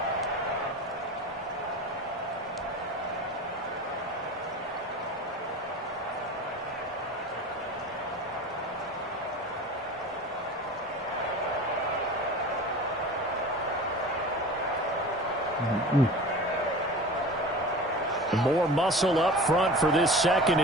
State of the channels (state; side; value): normal; both; correlation 0.36